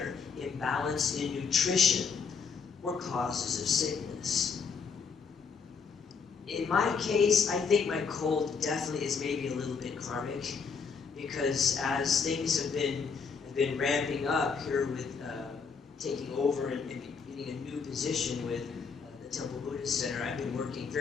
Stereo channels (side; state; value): right; quieter; 5.7 dB